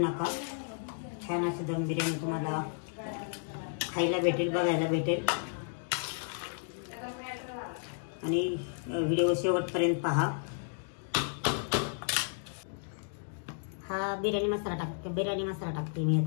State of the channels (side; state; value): right; silent; digital silence